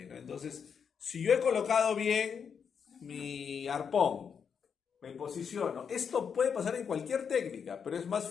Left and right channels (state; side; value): quieter; right; 6.8 dB